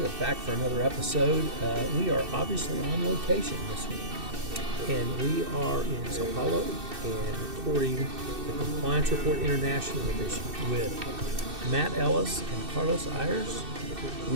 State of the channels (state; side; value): late; left; 2.6 ms